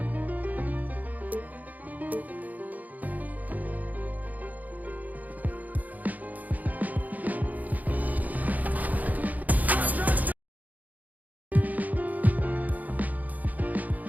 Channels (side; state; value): left; late; 0.079 ms